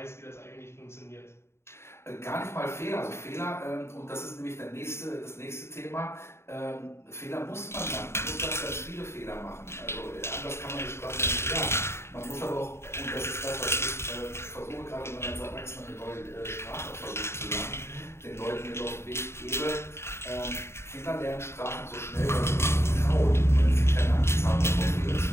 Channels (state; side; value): late; right; 0.12 ms